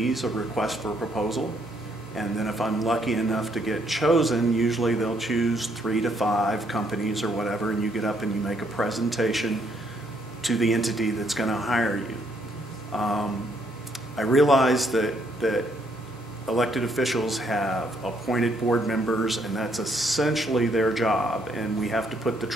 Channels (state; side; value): normal; both; correlation 0.71